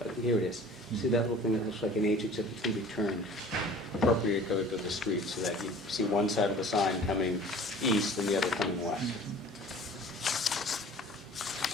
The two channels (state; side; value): normal; both; correlation 0.46